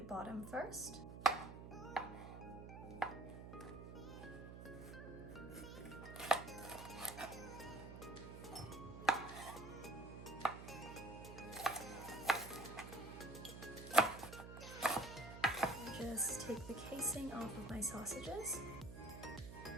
first. Just take the casing off of my sausages.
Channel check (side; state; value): right; noise; hum, 11 dB below the sound